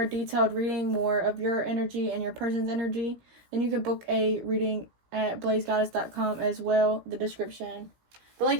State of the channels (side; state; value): left; late; 17 ms